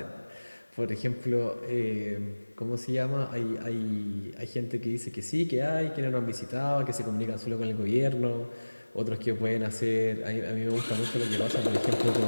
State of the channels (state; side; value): inverted; both; correlation -1.00